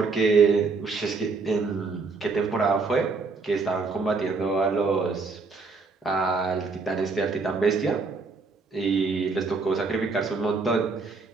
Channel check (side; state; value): left; quieter; 4.3 dB